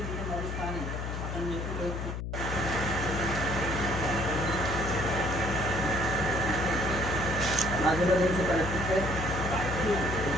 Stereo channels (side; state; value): left; noise; hum, 4 dB below the sound